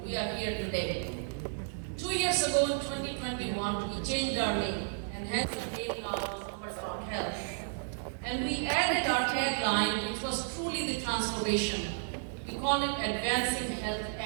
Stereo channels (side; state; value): left; silent; digital silence